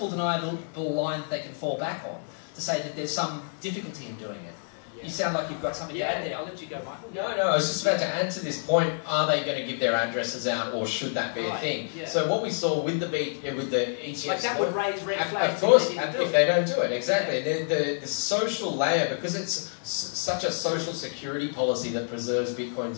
deniable line that they can fall back on to say that there's some difficulty in doing it. Yeah. You sound like you've got something to add there. I'll let you go, Michael. No, I was just about to add to this point. Are they going to give their addresses out, or should that be a thing? Yeah. So what we saw with the ETFs, like that would raise red flags. Of course, if they don't do it, exactly. Yeah. The social layer, because it's such a social security policy that preserves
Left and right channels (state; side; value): silent; right; digital silence